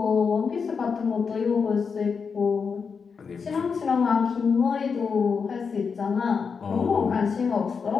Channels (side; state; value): right; quieter; 5.7 dB